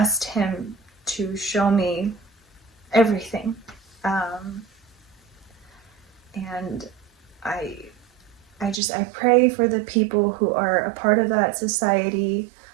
him to show me everything. And I pray for the people who are a part of that society.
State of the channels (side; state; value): left; drops out; at 8.8 s